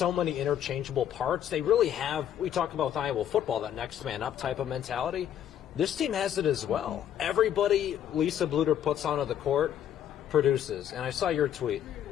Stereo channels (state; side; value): quieter; right; 10.1 dB